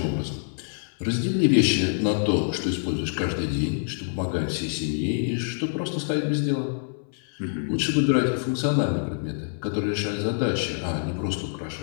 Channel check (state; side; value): silent; right; 61 dB below the other